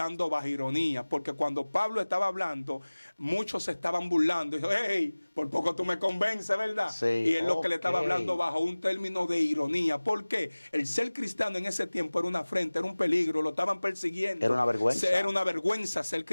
bajo ironía, porque cuando Pablo estaba hablando, muchos se estaban burlando. Dijo, hey, por poco tú me convences, ¿verdad? Sí, y es lo que le estaba hablando bajo un término de ironía. ¿Por qué? El ser cristiano en ese tiempo era una afrenta, era un peligro, lo estaban persiguiendo. Era una vergüenza. Era una vergüenza ser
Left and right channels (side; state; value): both; inverted; correlation -1.00